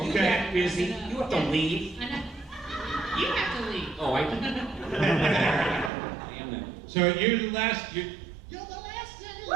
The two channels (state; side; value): drops out; left; at 5.9 s